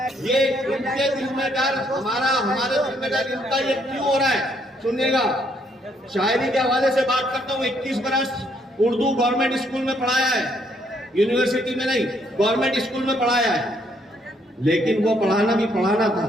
ये इनके दिल में डर, हमारे दिल में डर, इनका ये क्यों हो रहा है सुनिएगा। शायरी के हवाले से बात करता हूँ। 21 बरस उर्दू गवर्नमेंट स्कूल में पढ़ाया है, यूनिवर्सिटी में नहीं, गवर्नमेंट स्कूल में पढ़ाया है। लेकिन वो पढ़ाना भी पढ़ाना था,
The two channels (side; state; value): both; normal; correlation 0.70